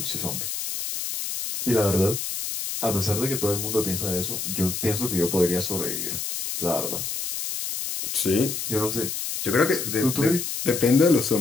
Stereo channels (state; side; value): noise; left; hiss, 4 dB below the sound